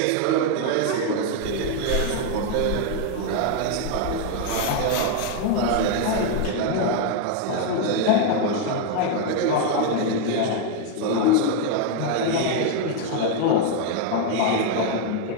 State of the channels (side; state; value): both; different; correlation 0.01